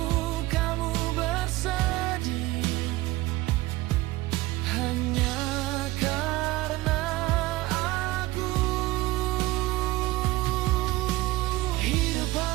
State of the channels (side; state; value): left; quieter; 18.7 dB